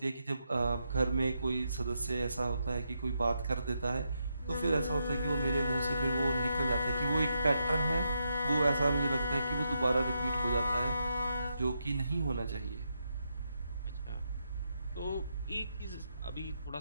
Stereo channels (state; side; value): inverted; both; correlation -0.82